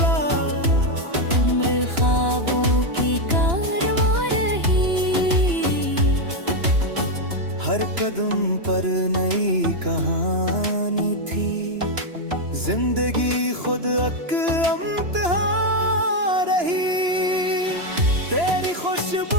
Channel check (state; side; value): late; left; 2.9 ms